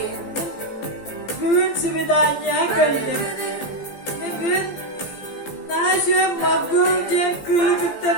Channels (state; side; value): late; right; 15 ms